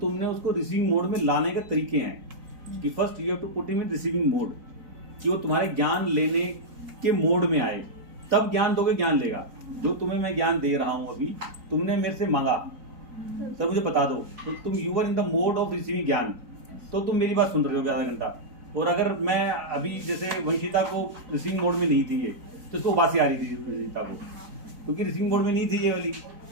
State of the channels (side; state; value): left; late; 4.0 ms